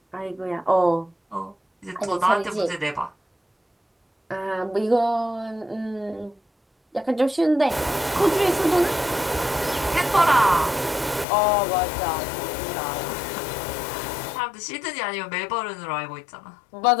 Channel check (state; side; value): drops out; right; at 11.2 s